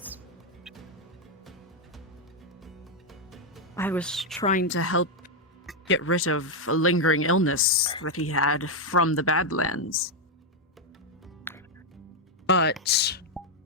I was trying to help get rid of a lingering illness that he had from the Badlands. But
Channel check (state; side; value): normal; both; correlation 0.01